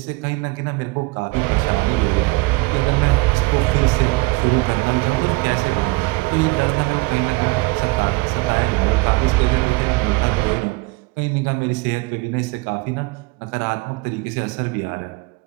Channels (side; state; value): left; quieter; 24.8 dB